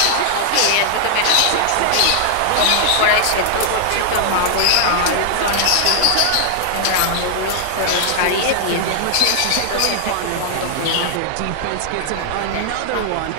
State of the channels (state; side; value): different; both; correlation 0.00